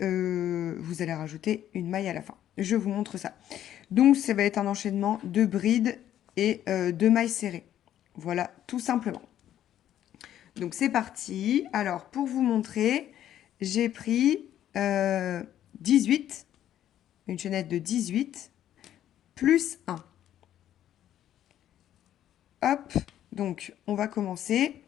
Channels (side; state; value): right; quieter; 11.4 dB